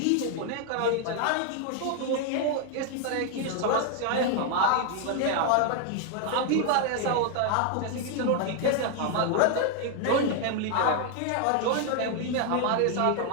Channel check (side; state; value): both; different; correlation 0.00